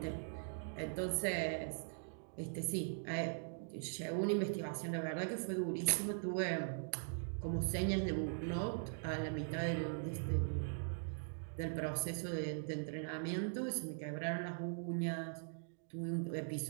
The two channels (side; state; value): left; silent; digital silence